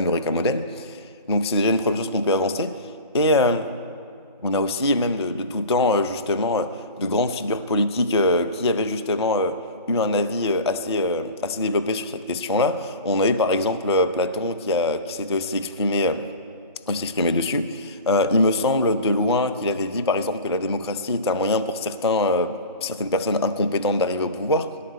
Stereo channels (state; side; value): inverted; both; correlation -0.35